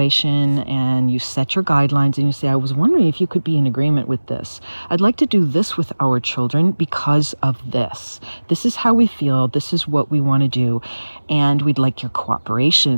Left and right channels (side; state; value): both; inverted; correlation -1.00